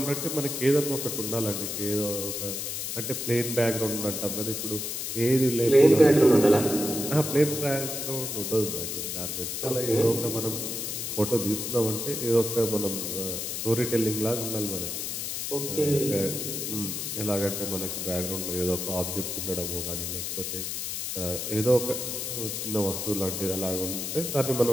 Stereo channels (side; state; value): left; noise; hiss, 4 dB below the sound